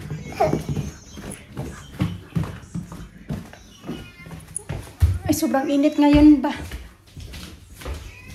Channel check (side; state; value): both; identical; correlation 1.00